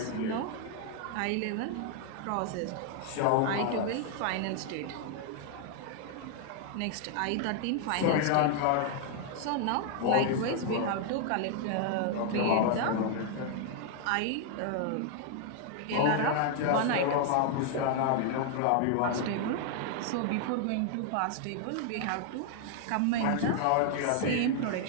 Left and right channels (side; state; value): both; different; correlation 0.00